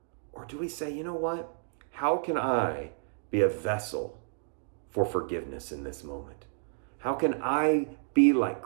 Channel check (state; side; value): silent; left; digital silence